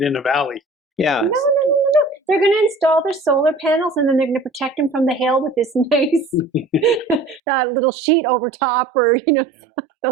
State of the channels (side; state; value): left; drops out; at 7.4 s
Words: in a valley. Yeah. No. They're going to install their solar panels, and then they're going to protect them from the hail with this nice little sheet over top, or